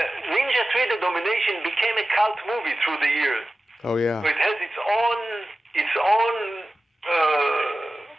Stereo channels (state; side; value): normal; both; correlation 0.95